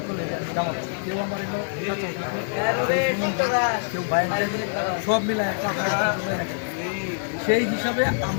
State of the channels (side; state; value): right; silent; digital silence